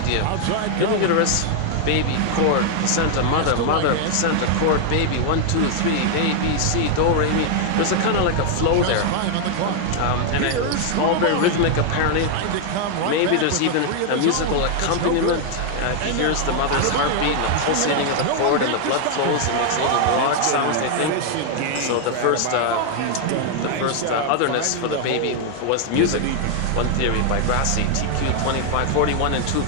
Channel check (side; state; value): both; different; correlation 0.00